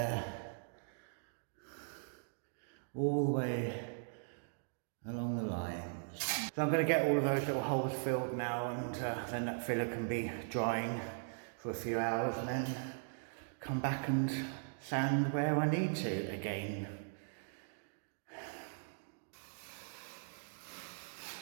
all the way along the lines. So I'm going to get all of those little holes filled now, and then that filler can be drying for a few hours, and then come back and sand where I need to again.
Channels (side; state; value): left; silent; digital silence